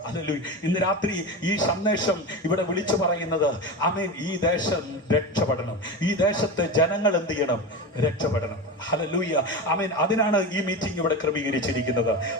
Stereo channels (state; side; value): normal; both; correlation 0.23